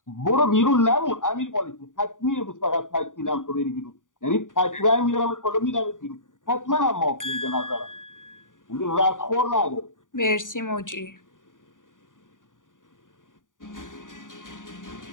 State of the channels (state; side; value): late; right; 0.88 ms